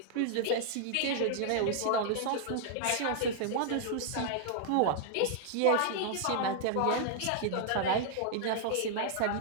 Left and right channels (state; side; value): different; both; correlation -0.01